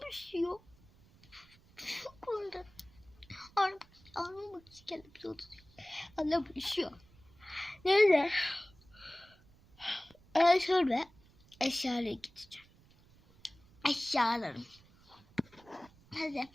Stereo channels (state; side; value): noise; right; rumble, 27 dB below the sound